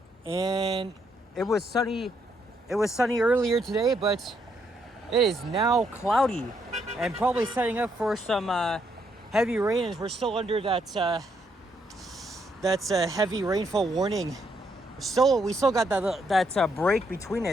And it was sunny earlier today, but it is now cloudy and probably setting up for some heavy rain, as we're still under that heavy rainfall warning. We still got that break between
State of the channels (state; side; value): normal; both; correlation 0.75